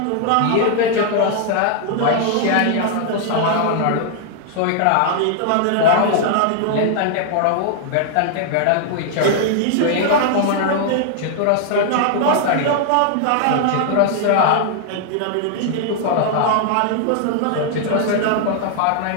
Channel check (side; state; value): both; different; correlation 0.00